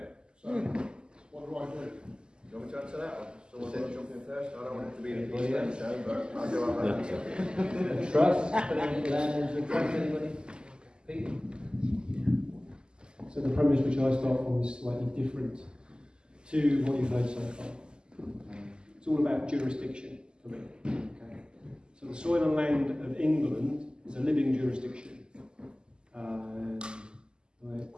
So what do I do? Do you want me to answer that one? Someone want to jump in first? I don't want it to be the Pete Stone Show, but I'll go on that. Trust? Putting land into a trust, anybody? Pete? So the premise which I start from is slightly different to what you've heard so far. It's all about jurisdiction for me. Okay. So the soil and land of England is a living jurisdiction. The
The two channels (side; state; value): left; late; 0.047 ms